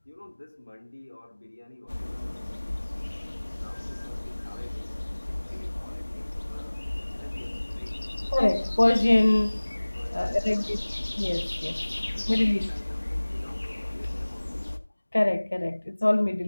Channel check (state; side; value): inverted; both; correlation -1.00